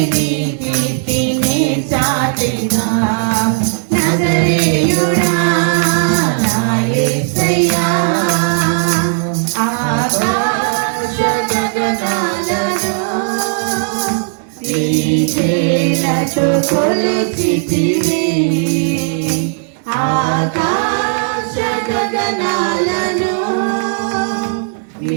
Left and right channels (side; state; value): left; silent; digital silence